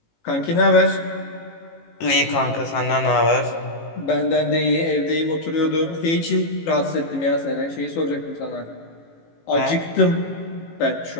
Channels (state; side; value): late; right; 18 ms